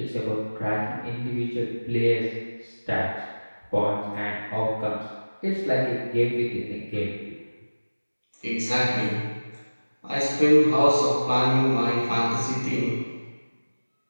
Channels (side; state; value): both; inverted; correlation -1.00